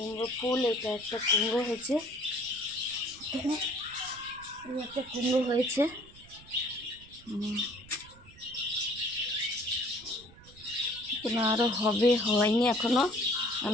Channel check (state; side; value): noise; right; rumble, 22 dB below the sound